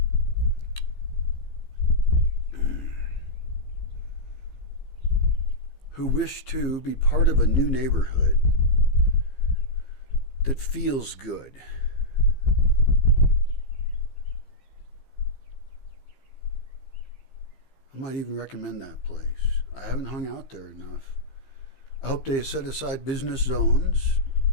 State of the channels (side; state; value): right; late; 15 ms